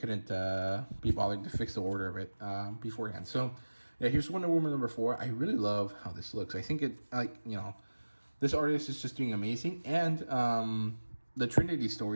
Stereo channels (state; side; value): inverted; both; correlation -1.00